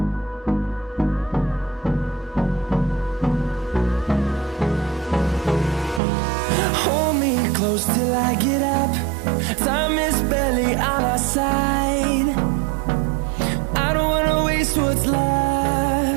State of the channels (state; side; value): drops out; left; at 6.0 s